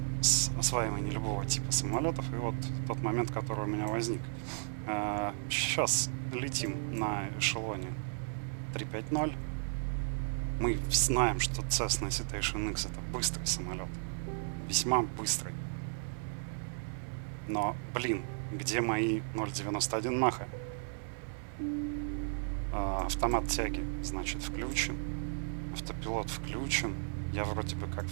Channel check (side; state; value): left; silent; 55 dB below the other